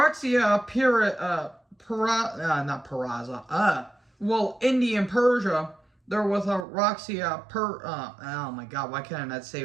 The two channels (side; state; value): left; drops out; at 6.7 s